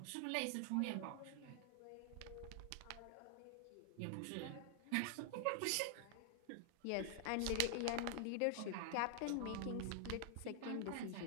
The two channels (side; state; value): both; different; correlation 0.00